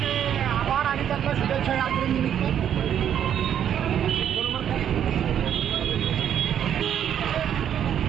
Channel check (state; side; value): quieter; left; 9.5 dB